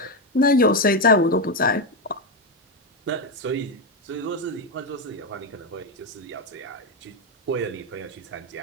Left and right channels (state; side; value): normal; both; correlation 0.08